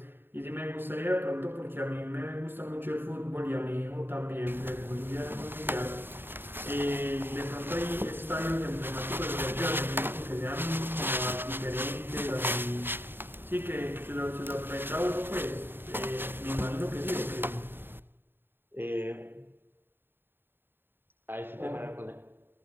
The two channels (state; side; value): late; left; 0.10 ms